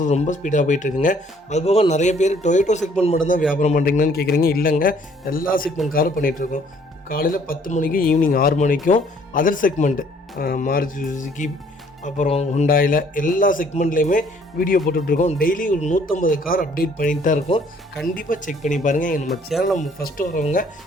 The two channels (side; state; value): both; normal; correlation 0.60